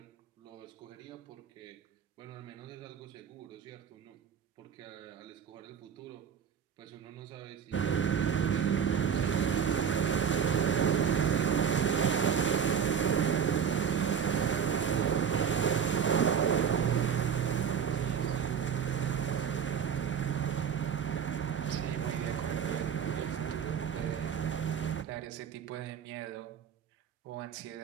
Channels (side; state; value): left; quieter; 7.5 dB